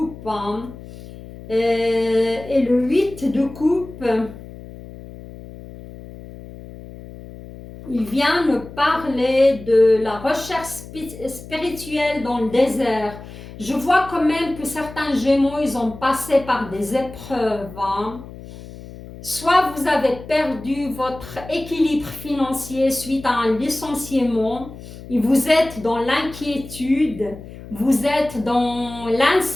Hein. Et le 8 de coupe, il vient me parler de la recherche spirituelle dans le désert. Je vois quand même que certains Gémeaux, ils ont passé par des épreuves. Hein. Soit vous avez perdu votre équilibre financier suite à un licenciement et vous êtes dans l'inquiétude, vous êtes dans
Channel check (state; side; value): noise; left; hum, 15 dB below the sound